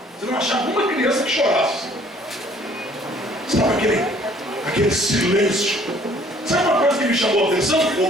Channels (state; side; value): normal; both; correlation 0.58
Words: Você não achava uma criança que chorasse. Sabe aquele silêncio. Sabe uma coisa que me chamou a atenção,